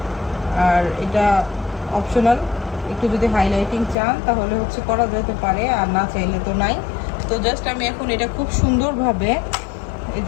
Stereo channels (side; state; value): right; drops out; at 4.0 s